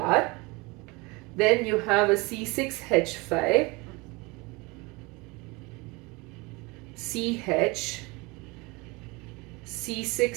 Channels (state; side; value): quieter; left; 25.7 dB